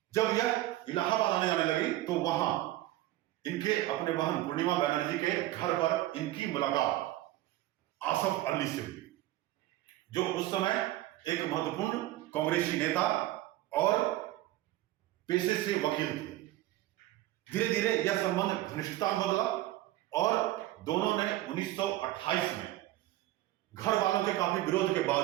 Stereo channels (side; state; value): left; quieter; 15.9 dB